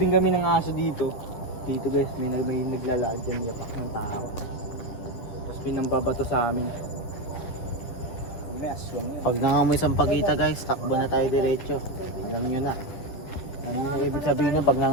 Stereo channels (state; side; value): late; right; 10 ms